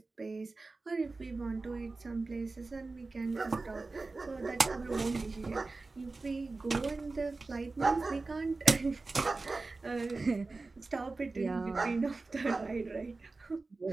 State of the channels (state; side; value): quieter; left; 3.6 dB